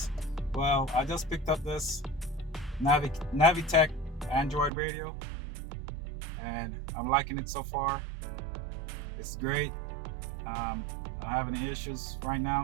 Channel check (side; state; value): left; drops out; at 4.7 s